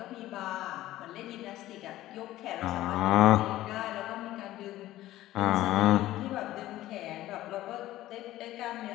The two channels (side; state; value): right; quieter; 15.2 dB